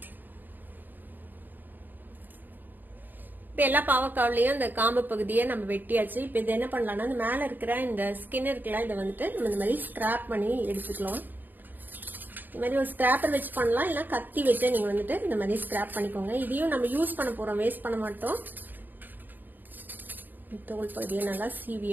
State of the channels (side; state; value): left; late; 0.088 ms